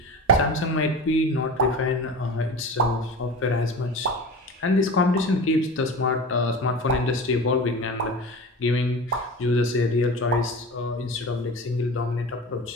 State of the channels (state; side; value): normal; both; correlation 0.32